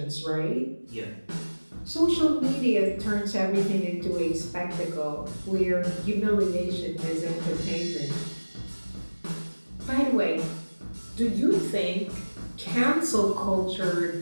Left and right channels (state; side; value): inverted; both; correlation -1.00